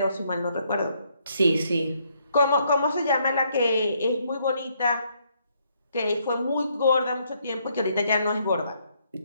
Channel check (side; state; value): both; inverted; correlation -0.71